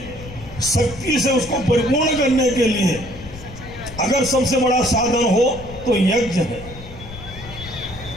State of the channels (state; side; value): noise; left; rumble, 14 dB below the sound